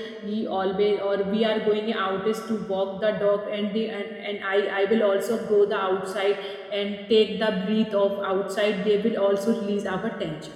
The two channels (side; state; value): both; identical; correlation 1.00